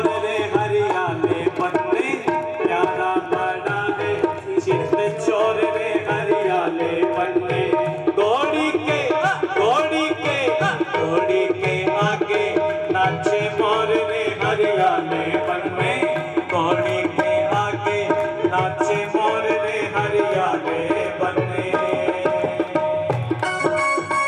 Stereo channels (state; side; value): identical; both; correlation 1.00